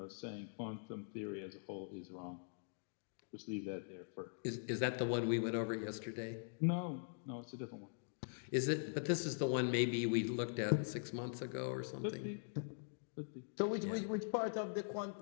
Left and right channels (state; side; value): silent; right; digital silence